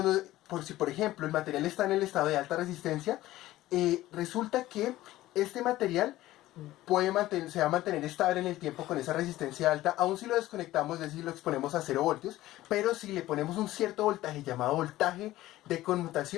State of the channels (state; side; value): quieter; right; 15.9 dB